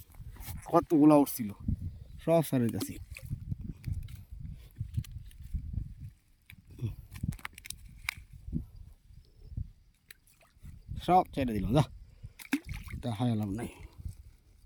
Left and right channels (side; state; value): both; identical; correlation 1.00